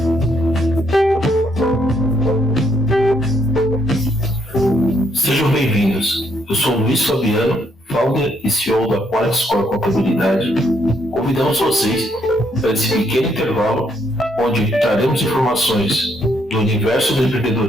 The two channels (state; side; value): normal; both; correlation 0.72